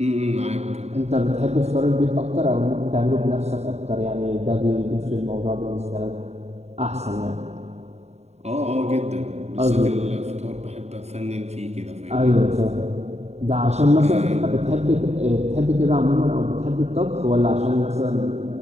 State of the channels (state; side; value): late; left; 0.32 ms